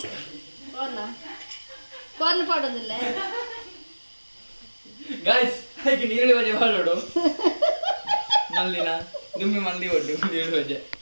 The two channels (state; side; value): inverted; both; correlation -1.00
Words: ಕಾರ್ನ್ ಪಾಡೋದಿಲ್ಲ ಗೈಸ್ ಹಾಗೆ ನೀರುಳ್ಳಿ ಬಜೆ ಮಾಡೋಡು ಮಲ್ಲಿನ ದುಮ್ಮಿ ಮಂದಿ ಒಡ್ಡು ನೀರುಳ್ಳಿ ಬಜೆ